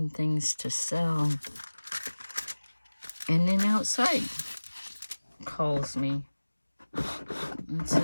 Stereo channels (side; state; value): both; inverted; correlation -1.00